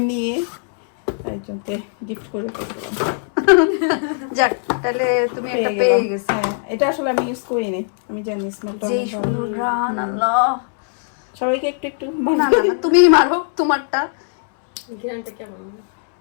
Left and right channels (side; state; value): right; silent; 66 dB below the other